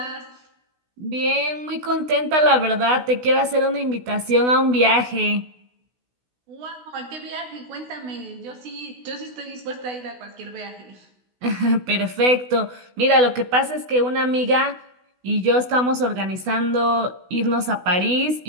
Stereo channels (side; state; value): left; late; 16 ms